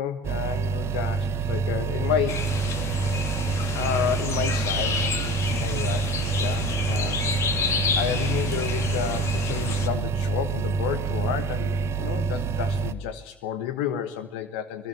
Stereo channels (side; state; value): both; normal; correlation 0.36